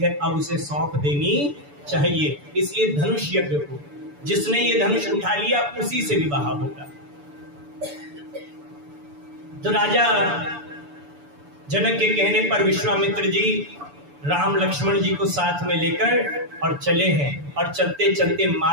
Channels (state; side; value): late; left; 6.9 ms